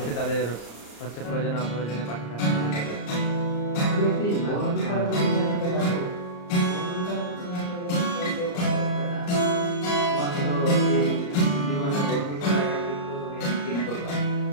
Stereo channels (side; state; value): right; late; 34 ms